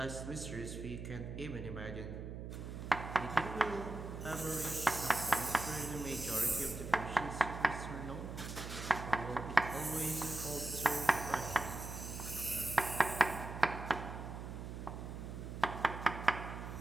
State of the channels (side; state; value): right; noise; hum, 8 dB below the sound